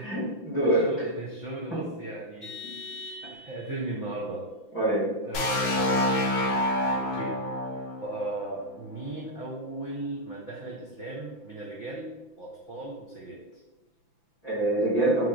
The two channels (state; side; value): late; right; 5.9 ms